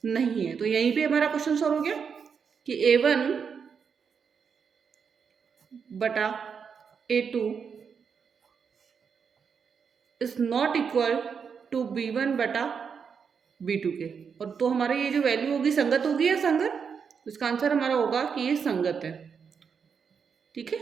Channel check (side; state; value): left; quieter; 6.4 dB